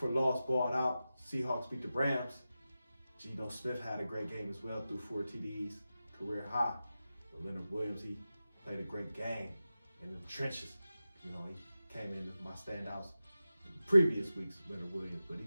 loss, balled out. Seahawks beat the Rams. Geno Smith had a great game as well, threw 4 TDs, career high. But Leonard Williams, he played a great game in the trenches. You know, he came into my standouts in previous weeks, Leonard Williams, but he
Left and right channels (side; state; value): both; inverted; correlation -0.94